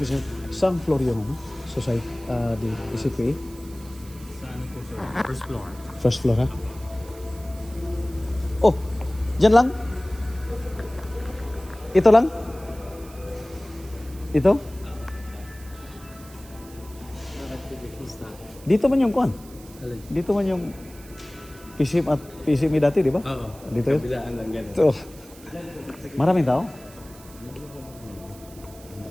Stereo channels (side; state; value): right; noise; hiss, 21 dB below the sound